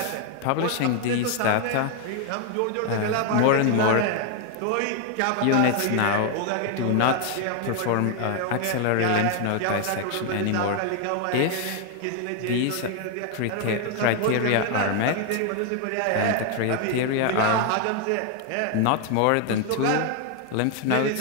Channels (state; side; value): different; both; correlation 0.00